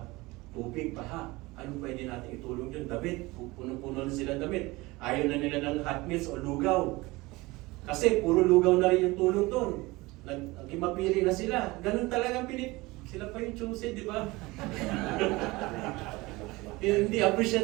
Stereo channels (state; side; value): quieter; left; 21.8 dB